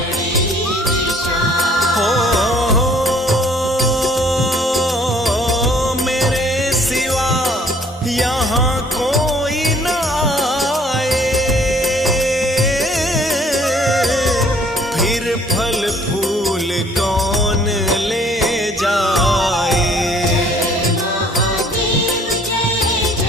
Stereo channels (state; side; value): normal; both; correlation 0.58